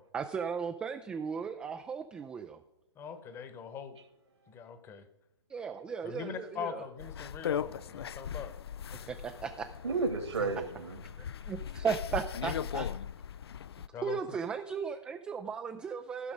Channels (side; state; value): both; normal; correlation 0.21